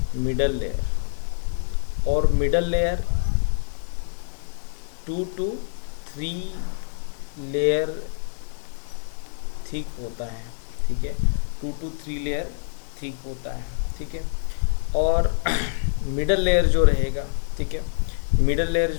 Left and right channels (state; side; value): silent; right; 59 dB below the other